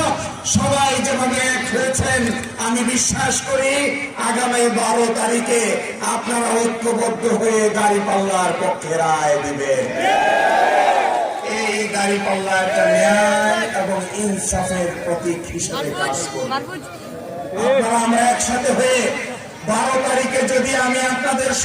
সবাই যেভাবে এক হয়েছেন, আমি বিশ্বাস করি আগামী 12 তারিখে আপনারা ঐক্যবদ্ধ হয়ে দাঁড়িপাল্লার পক্ষে রায় দিবেন। এই দাঁড়িপাল্লা একটা ন্যায় এবং ইনসাফের প্রতীক হিসেবে কাজ করবে। আপনারা আমরা একসাথে হয়ে 12 তারিখে যদি আমি আপনাদের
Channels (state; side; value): identical; both; correlation 1.00